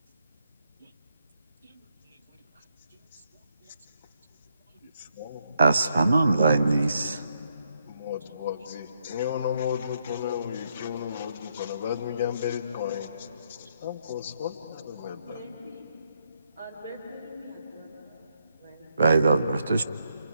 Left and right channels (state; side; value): inverted; both; correlation -0.77